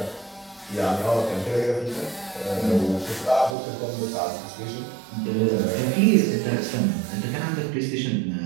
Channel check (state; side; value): drops out; left; at 3.6 s